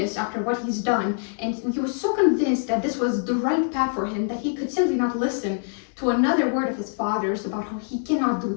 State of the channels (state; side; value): silent; right; 62 dB below the other